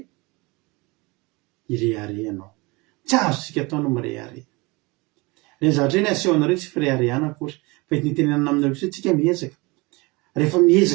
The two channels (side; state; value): left; quieter; 25.3 dB